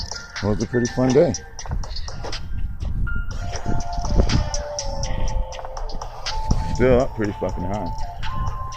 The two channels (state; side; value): identical; both; correlation 1.00